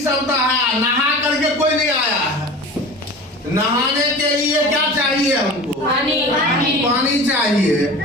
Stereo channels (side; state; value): both; normal; correlation 0.36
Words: तो है। नहा करके कोई नहीं आया है। नहाने के लिए क्या चाहिए हमको? पानी चाहिए।